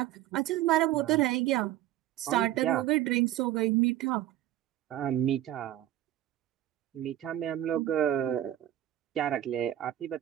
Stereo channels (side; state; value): left; quieter; 13.2 dB